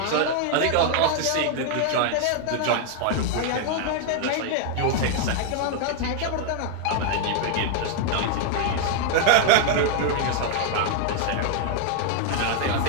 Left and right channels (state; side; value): different; both; correlation 0.00